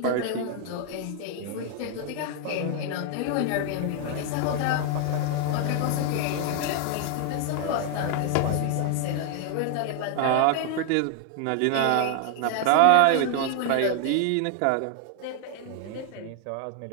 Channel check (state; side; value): different; both; correlation 0.00